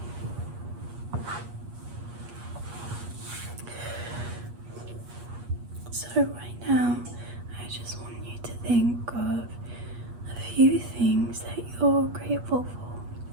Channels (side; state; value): left; late; 8.4 ms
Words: So right now, I just want you to think of a few things that you're grateful for.